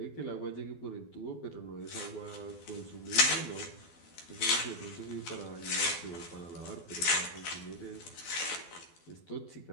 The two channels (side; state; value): right; late; 12 ms